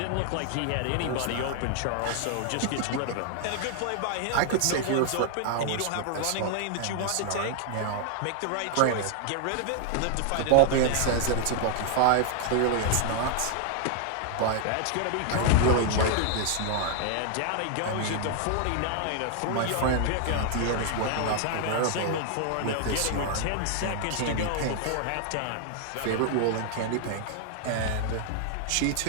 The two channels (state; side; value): different; both; correlation 0.00